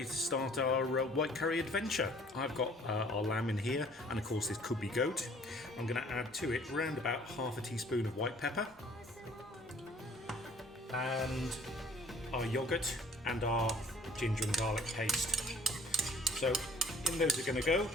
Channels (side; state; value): both; normal; correlation 0.55